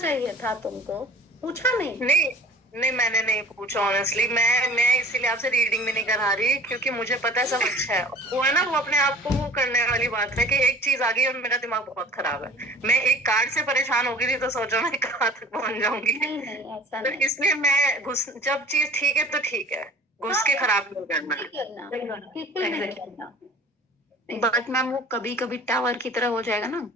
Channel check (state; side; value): normal; both; correlation 0.45